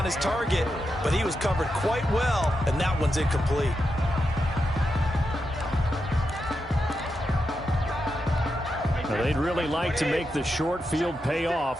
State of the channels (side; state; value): both; normal; correlation 0.87